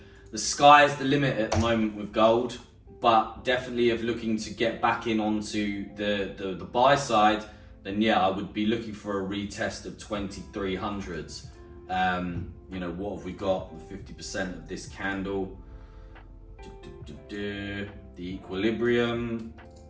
sky's the limit at the moment with gold, but definitely if looking to get back in onto the buy side, then yeah, I would be looking for a retest of 2300s. You know, what have we got? 50% of this candle. The equilibrium.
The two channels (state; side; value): identical; both; correlation 1.00